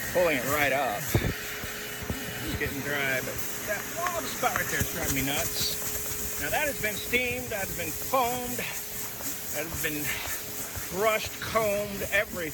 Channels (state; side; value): identical; both; correlation 1.00